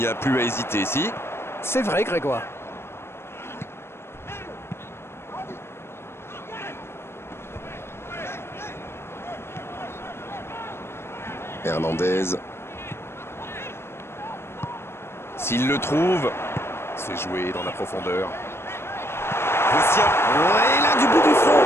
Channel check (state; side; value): late; right; 0.12 ms